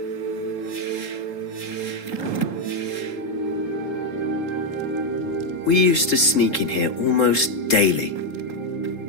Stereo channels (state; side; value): late; right; 3.8 ms